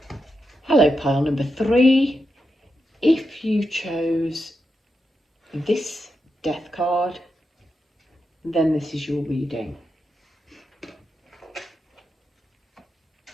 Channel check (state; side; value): normal; both; correlation 0.86